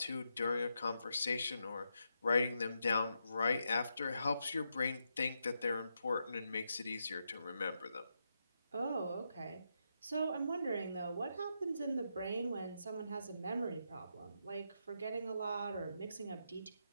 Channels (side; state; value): both; inverted; correlation -0.83